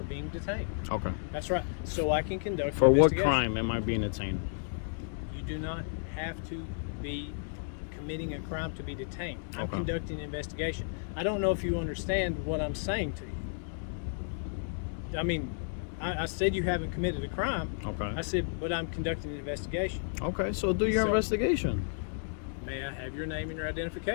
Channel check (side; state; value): right; silent; digital silence